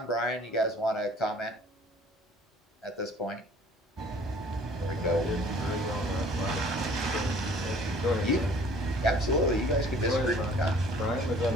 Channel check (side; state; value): both; normal; correlation 0.53